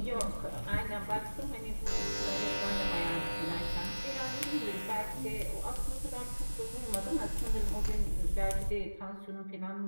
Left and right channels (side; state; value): both; inverted; correlation -1.00